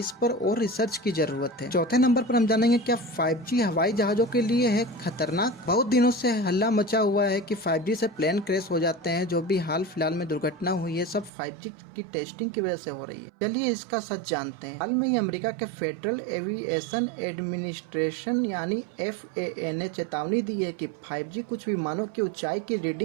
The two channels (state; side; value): drops out; left; at 11.3 s